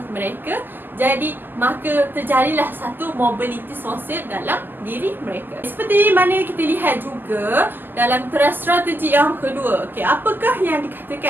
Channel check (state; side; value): late; left; 0.091 ms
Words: mereka. Jadi maka terjadilah satu mobiliti sosial dalam diri mereka. Seperti mana kita lihat juga dalam teras strategi yang kedua. Okey, apakah yang